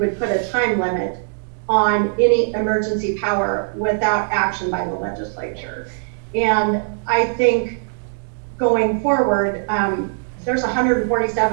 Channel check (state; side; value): silent; left; digital silence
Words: put a time limit on any emergency power without action by the legislature. And I think going forward, there's